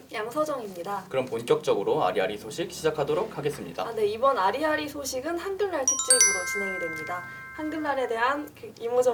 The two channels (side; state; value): both; identical; correlation 1.00